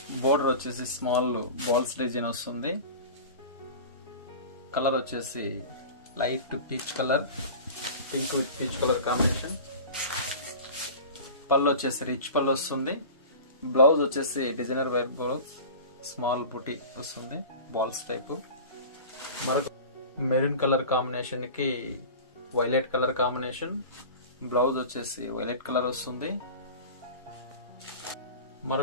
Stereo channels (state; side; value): inverted; both; correlation -0.35